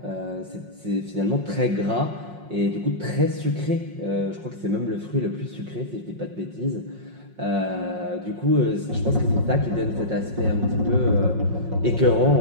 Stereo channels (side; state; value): left; late; 5.5 ms